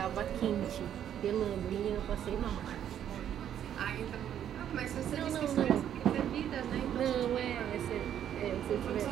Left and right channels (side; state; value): left; quieter; 10.0 dB